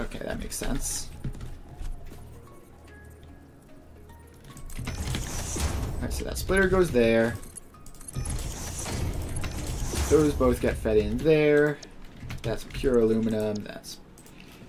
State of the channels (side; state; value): both; identical; correlation 1.00